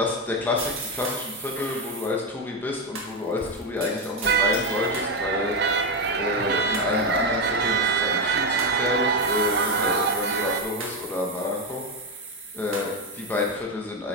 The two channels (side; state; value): both; normal; correlation 0.10